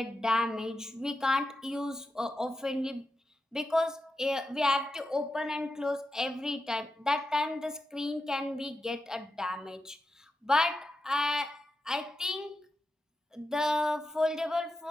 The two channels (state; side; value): normal; both; correlation 0.89